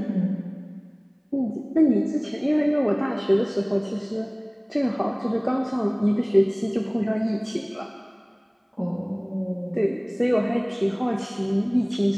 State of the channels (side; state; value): both; identical; correlation 1.00